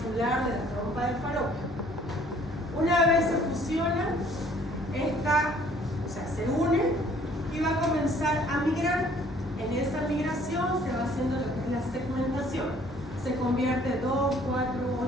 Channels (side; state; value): both; normal; correlation 0.58